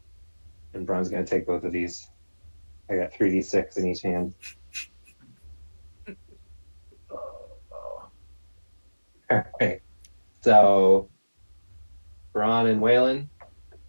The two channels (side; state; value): both; inverted; correlation -1.00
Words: And Braun's going to take both of these. I got 3d6 in each hand. All right. So, Bran and Waylon